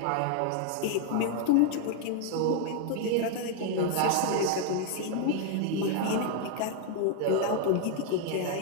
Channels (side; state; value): both; different; correlation 0.00